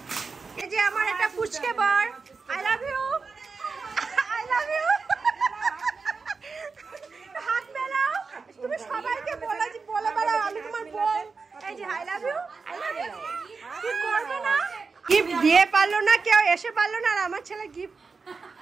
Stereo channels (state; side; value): quieter; left; 4.7 dB